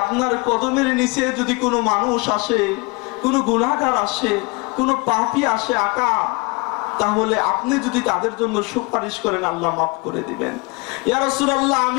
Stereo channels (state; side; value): quieter; right; 28.6 dB